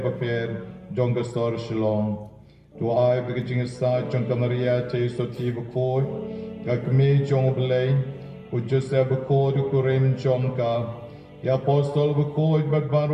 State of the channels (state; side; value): identical; both; correlation 1.00